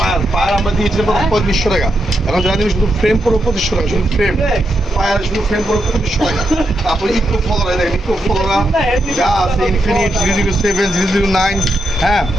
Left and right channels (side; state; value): both; normal; correlation 0.84